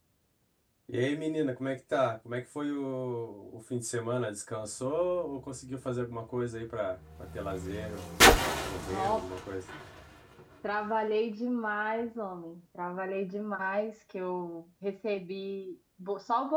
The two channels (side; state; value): both; identical; correlation 1.00